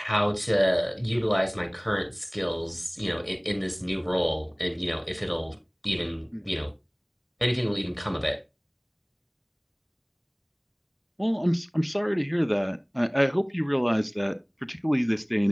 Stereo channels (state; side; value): identical; both; correlation 1.00